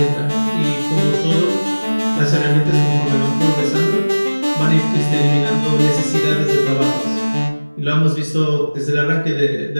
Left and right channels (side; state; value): both; inverted; correlation -1.00